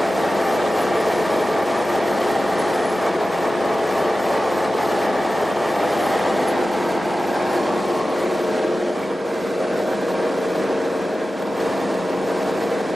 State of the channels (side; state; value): both; normal; correlation 0.94